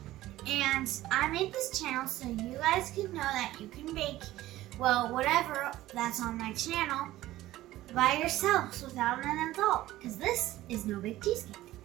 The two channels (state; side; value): quieter; left; 15.7 dB